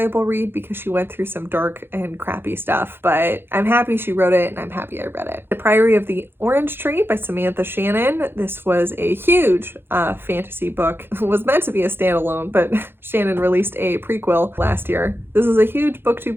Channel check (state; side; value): late; left; 0.10 ms